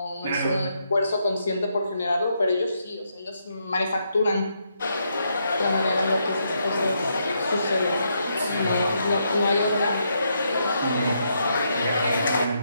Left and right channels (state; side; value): inverted; both; correlation -0.78